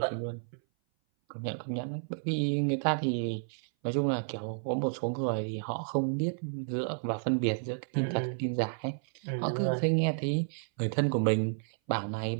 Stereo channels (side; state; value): left; silent; 57 dB below the other